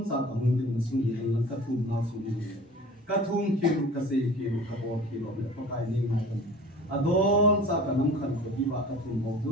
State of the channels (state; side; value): normal; both; correlation 0.42